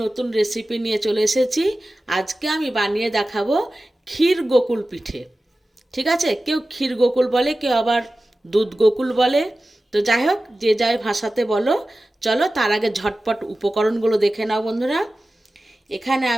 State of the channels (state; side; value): normal; both; correlation 0.95